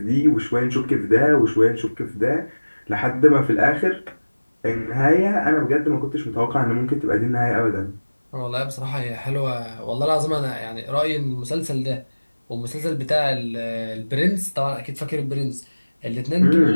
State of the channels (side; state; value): both; inverted; correlation -1.00